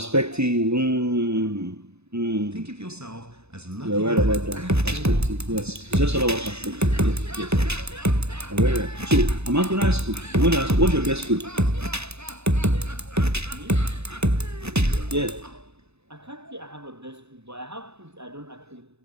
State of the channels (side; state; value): left; late; 0.80 ms